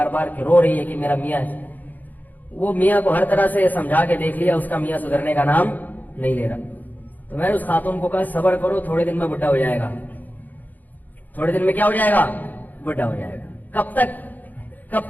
بار کہ رو رہی ہے کہ میرا میاں ہے. وہ میاں کو ہر طرح سے سمجھا کے دیکھ لیا, اس کا میاں سدھرنے کا نام نہیں لے رہا. تو میں نے اس خاتون کو کہا صبر کرو, تھوڑے دن میں بڈھا ہو جائے گا, تھوڑے دن میں کیا ہو جائے گا, بڈھا ہو جائے گا. کب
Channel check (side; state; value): right; late; 0.083 ms